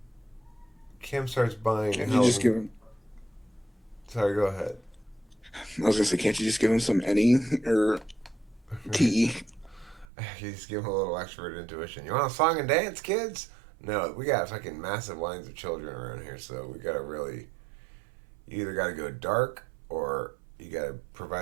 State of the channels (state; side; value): drops out; left; at 10.1 s